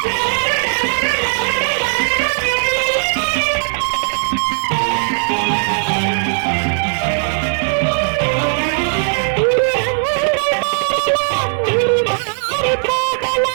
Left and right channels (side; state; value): left; silent; 60 dB below the other